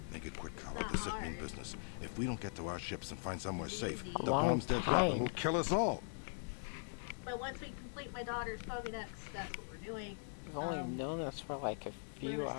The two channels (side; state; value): right; silent; digital silence